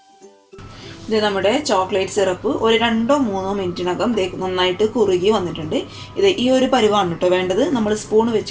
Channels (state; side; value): identical; both; correlation 1.00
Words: ഇത് നമ്മുടെ ചോക്ലേറ്റ് സിറപ്പ് ഒരു 2-3 മിനിറ്റിനകം നന്നായിട്ട് കുറുകി വന്നിട്ടുണ്ട്. ഇത് ഈ ഒരു പരുവാണ് കേട്ടോ വേണ്ടത്. നമ്മൾ സ്പൂൺ